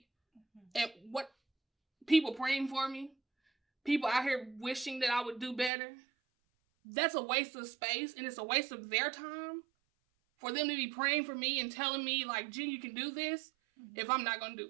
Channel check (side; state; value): left; drops out; at 5.7 s